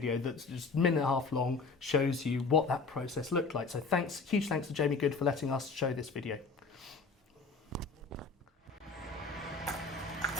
that's just a minute and a half long, shows you what that process looked like. So huge thanks to Jamie Good for letting us show this video.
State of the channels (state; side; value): quieter; right; 4.2 dB